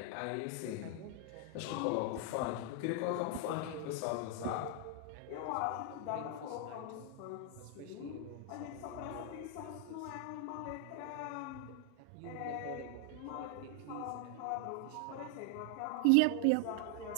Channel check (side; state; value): both; different; correlation 0.00